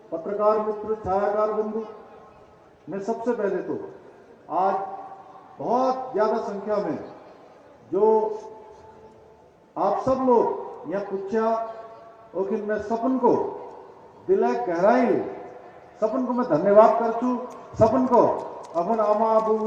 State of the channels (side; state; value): both; identical; correlation 1.00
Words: पत्रकार मित्र, छायाकार बंधु, मैं सबसे पहले तो आज बहुत ज्यादा संख्या में जो आप सब लोग यहाँ पूछा और मैं सपन को दिल गहराई सपन को मैं धन्यवाद करछू। सपन को अपन आमा